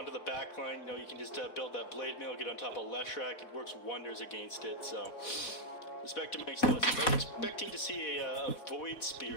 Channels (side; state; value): right; late; 4.1 ms